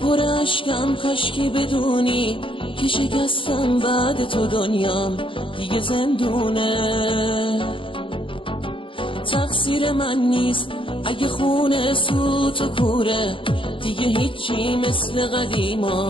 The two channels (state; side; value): late; right; 0.25 ms